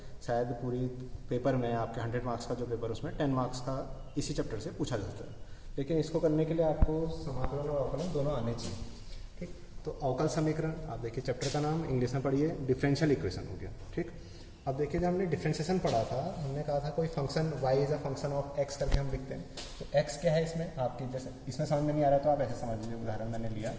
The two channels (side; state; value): both; identical; correlation 1.00